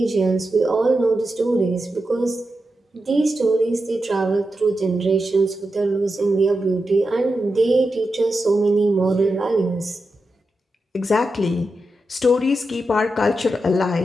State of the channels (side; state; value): both; normal; correlation 0.89